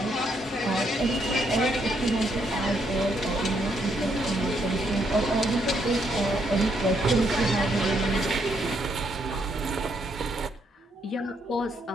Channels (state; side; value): normal; both; correlation 0.74